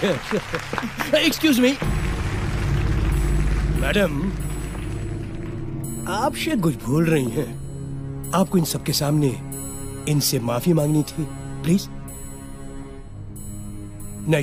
Excuse me madam, आप शायद कुछ भूल रही हैं। आपको इन सबके सामने इनसे माफी मांगनी थी, प्लीज। नहीं,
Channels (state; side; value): identical; both; correlation 1.00